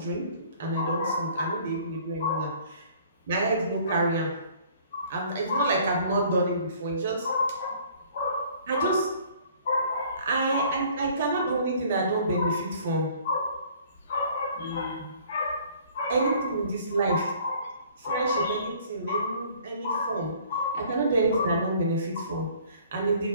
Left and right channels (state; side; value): inverted; both; correlation -0.55